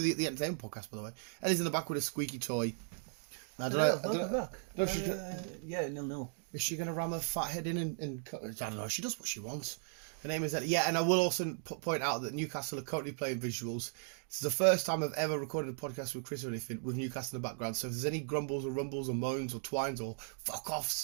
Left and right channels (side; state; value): left; silent; 53 dB below the other